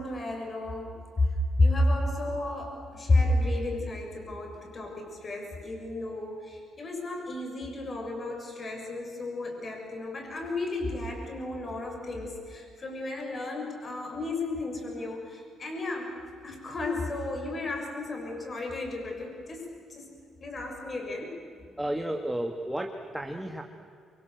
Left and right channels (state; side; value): normal; both; correlation 0.87